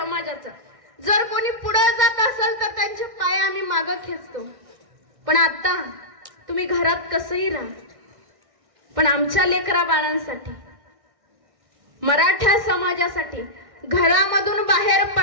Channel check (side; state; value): left; late; 1.6 ms